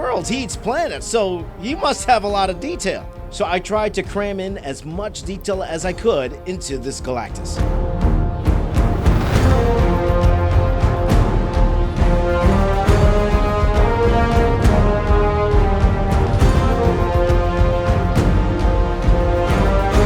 He eats planets, so he must have a lot of detail. So I tried to cram in as much detail as I could into this Galactus.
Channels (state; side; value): identical; both; correlation 1.00